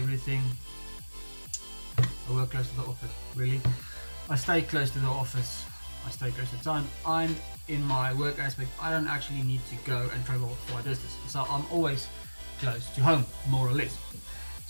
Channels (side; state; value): both; inverted; correlation -1.00